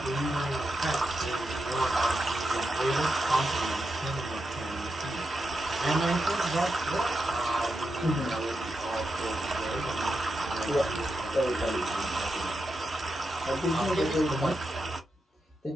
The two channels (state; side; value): normal; both; correlation 0.87